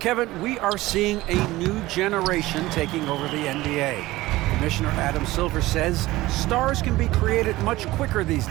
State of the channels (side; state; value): left; quieter; 18.2 dB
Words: we are seeing a new generation taking over the NBA. Commissioner Adam Silver says stars can be created much quicker these